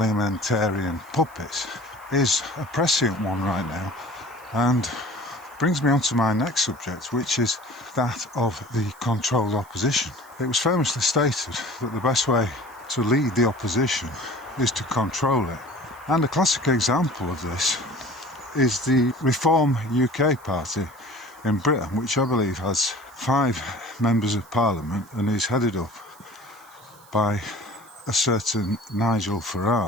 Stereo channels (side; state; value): right; noise; hiss, 26 dB below the sound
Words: puppets is a prescient one right now, and brings me on to my next subject, which is that of the controlled opposition. It was famously stated that the best way to lead the opposition is to control it. And a classic example of this is the Reform UK party in Britain, which I believe has 5 members of parliament and is headed up by a certain Nigel